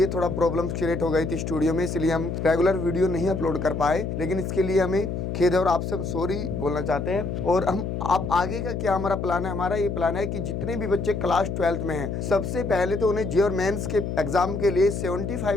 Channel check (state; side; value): noise; left; hum, 3 dB below the sound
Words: थोड़ा प्रॉब्लम्स क्रिएट हो गई थी स्टूडियो में, इसलिए हम रेगुलर वीडियो नहीं अपलोड कर पाए। लेकिन इसके लिए हमें खेद है और आपसे हम सॉरी बोलना चाहते हैं। और हम आप आगे का क्या हमारा प्लान है, हमारा ये प्लान है कि जितने भी बच्चे क्लास 12th में हैं, सबसे पहले तो उन्हें जे और मेंस के एग्जाम के लिए 75